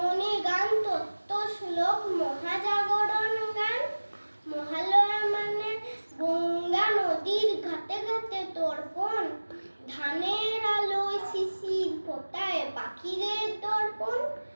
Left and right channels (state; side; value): inverted; both; correlation -1.00